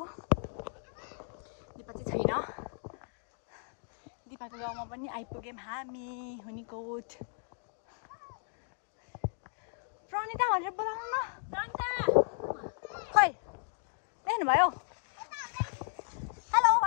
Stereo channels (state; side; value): silent; right; 55 dB below the other